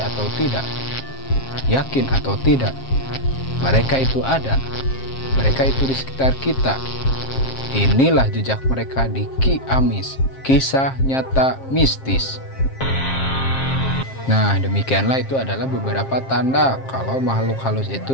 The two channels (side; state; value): right; late; 7.5 ms